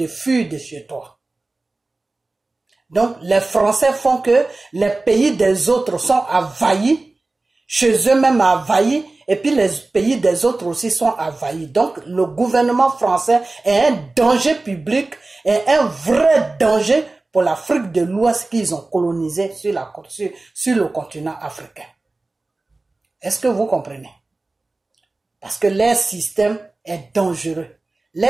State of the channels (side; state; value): left; quieter; 3.2 dB